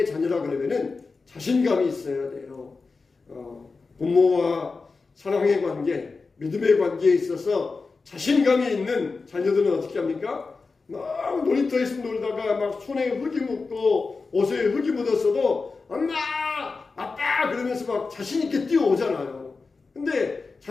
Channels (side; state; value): right; quieter; 4.2 dB